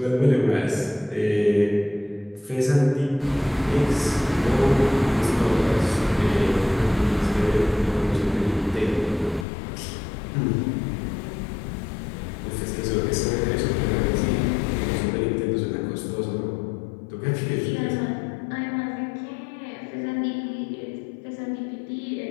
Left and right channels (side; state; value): right; drops out; at 9.5 s